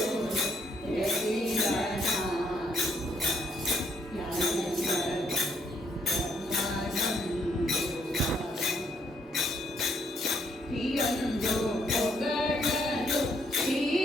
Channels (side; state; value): both; normal; correlation 0.71